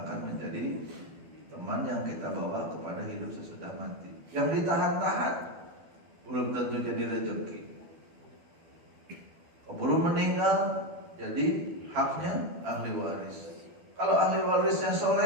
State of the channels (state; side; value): late; left; 12 ms